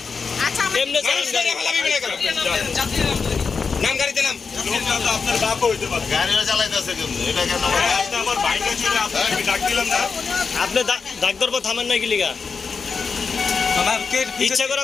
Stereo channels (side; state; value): right; quieter; 5.2 dB